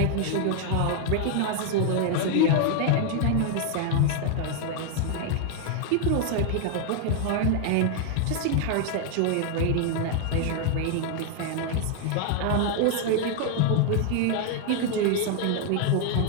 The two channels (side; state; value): both; different; correlation 0.00